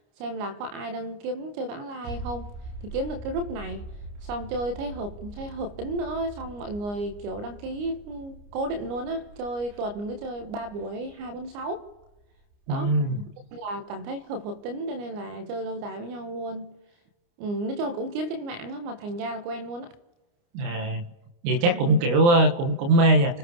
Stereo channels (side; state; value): left; late; 29 ms